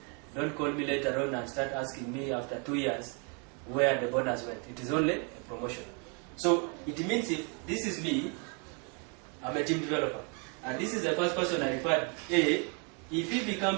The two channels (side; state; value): left; quieter; 36.7 dB